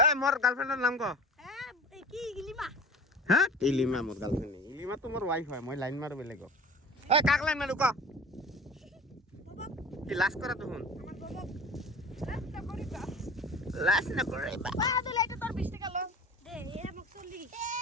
এ মোর গার্লফ্রেন্ডের নাম ক হ্যাঁ ইলিমা মোর গার্লফ্রেন্ড ইলিমা তো মোর ওয়াইফ হয় মই লাইন মারো বেলেগ এ কাক লাইন মারু ক কি লাস্ট করা তখন লাস্ট না করে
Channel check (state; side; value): normal; both; correlation 0.39